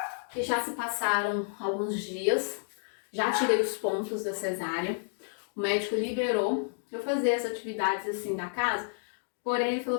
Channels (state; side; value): silent; right; digital silence